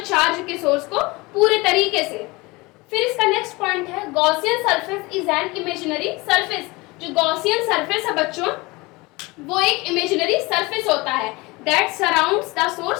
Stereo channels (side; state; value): right; quieter; 23.7 dB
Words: चार्ज के सोर्स को पूरे तरीके से। फिर इसका नेक्स्ट पॉइंट है Gaussian surface is an imaginary surface. जो गॉसियन सरफेस है बच्चों वो एक इमेजिनरी सरफेस होता है that surrounds the